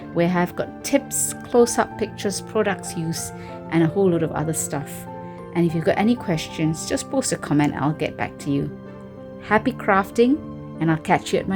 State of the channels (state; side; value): identical; both; correlation 1.00